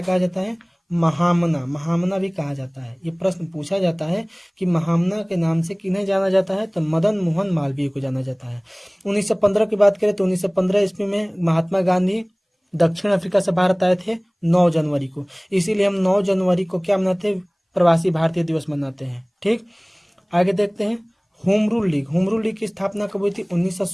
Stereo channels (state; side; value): identical; both; correlation 1.00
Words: कहा जाता है? महामना, महामना भी कहा जाता है। ये प्रश्न पूछा जाता है कि महामना के नाम से किन्हें जाना जाता है? तो मदन मोहन मालवीय को जाना जाता है। 1915 की बात करें तो 1915 ईस्वी में महात्मा गांधी दक्षिण अफ्रीका से भारत आए थे 9 जनवरी को। इसीलिए हम 9 जनवरी को क्या मनाते हैं? प्रवासी भारतीय दिवस मनाते हैं। ठीक, आगे देखते हैं होम रूल लीग की स्थापना कब हुई थी?